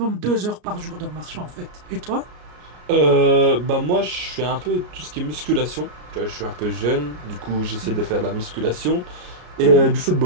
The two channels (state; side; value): late; left; 33 ms